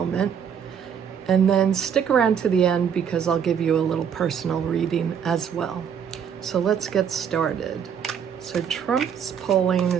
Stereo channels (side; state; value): left; quieter; 7.8 dB